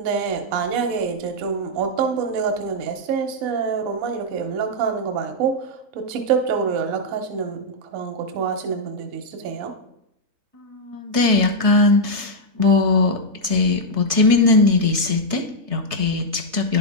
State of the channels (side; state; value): left; late; 3.3 ms